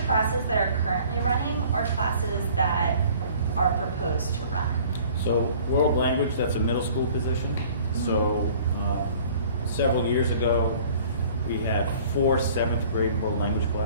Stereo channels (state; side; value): inverted; both; correlation -0.51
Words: classes that are currently running or classes that are proposed to run? So world language, that's a middle school position. So several years ago, we had 4 7th grade world language